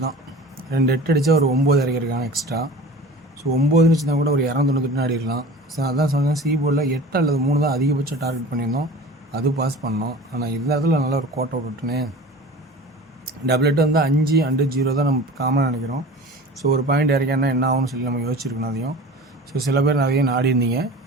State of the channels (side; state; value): both; normal; correlation 0.38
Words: தான். 2 8 அடித்தா ஒரு 9 இறக்கிருக்காங்க எக்ஸ்ட்ரா. ஸோ 9 வச்சுருந்தா கூட ஒரு 298 ஆடிடலாம். ஸோ அதான் சொன்னேன், சி போர்டில் 8 அல்லது 3 தான் அதிகபட்சம் டார்கெட் பண்ணியிருந்தோம். அது பாஸ் பண்ணோம். ஆனால் இந்த இடத்துல நல்ல ஒரு கோட்டை விட்டுனே டபுள் 8 வந்து 5 அண்டு 0 தான் நம்ம காமனாக நினைக்கிறோம். ஸோ ஒரு பாயிண்ட் இறக்கினா என்ன ஆகும்னு சொல்லி நம்ம யோசிச்சிருக்கணும் அதையும். ஸோ சில பேர் நிறைய நாடி இருந்தீங்க.